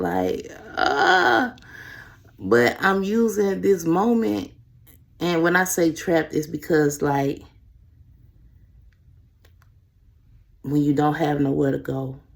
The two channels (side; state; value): both; identical; correlation 1.00